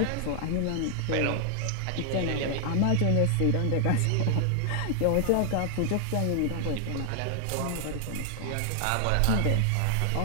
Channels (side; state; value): both; different; correlation 0.00